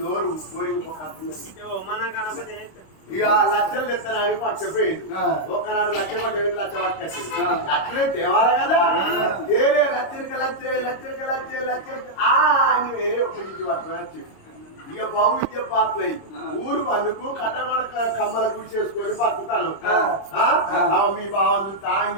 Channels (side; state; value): right; late; 26 ms